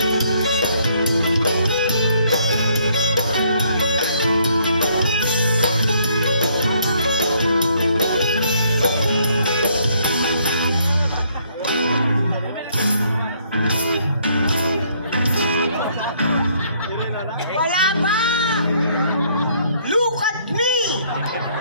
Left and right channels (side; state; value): both; inverted; correlation -0.67